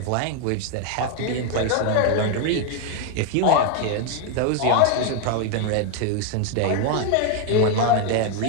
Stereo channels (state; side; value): different; both; correlation 0.01